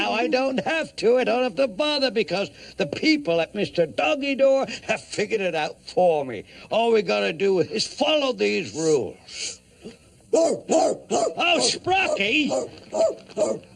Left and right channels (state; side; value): identical; both; correlation 1.00